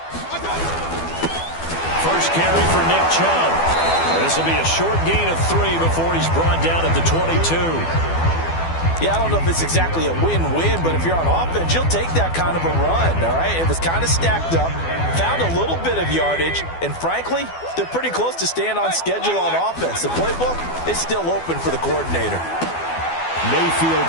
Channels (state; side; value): late; right; 12 ms